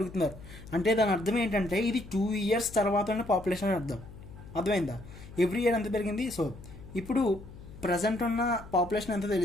అంటే దాని అర్థం ఏంటంటే ఇది 2 years తర్వాత ఉన్న పాపులేషన్ అర్థం. అర్థమైందా? ఎవ్రీ ఇయర్ ఎంత పెరిగింది. సో ఇప్పుడు ప్రజెంట్ ఉన్న పాపులేషన్ ఎంత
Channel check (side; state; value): left; noise; hum, 16 dB below the sound